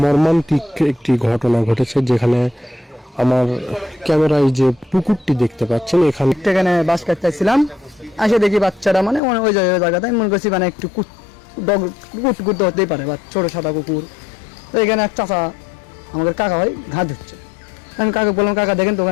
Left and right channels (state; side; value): drops out; right; at 9.2 s